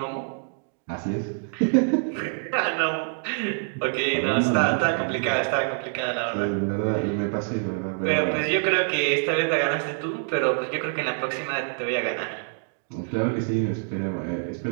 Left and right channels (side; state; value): left; silent; 58 dB below the other